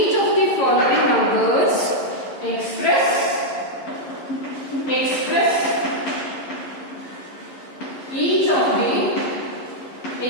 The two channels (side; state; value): right; late; 11 ms